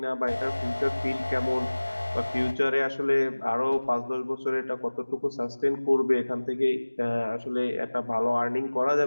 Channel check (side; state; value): both; inverted; correlation -1.00